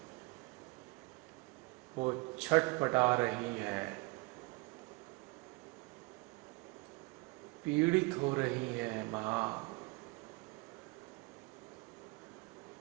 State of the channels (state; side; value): quieter; left; 26.2 dB